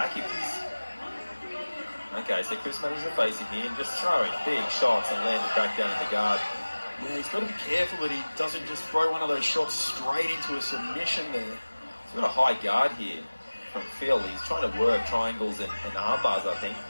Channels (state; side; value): inverted; both; correlation -1.00